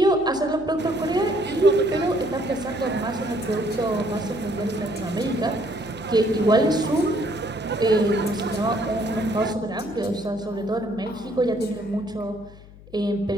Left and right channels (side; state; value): left; noise; hum, 20 dB below the sound